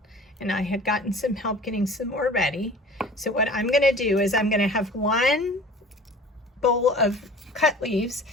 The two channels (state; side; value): normal; both; correlation 0.43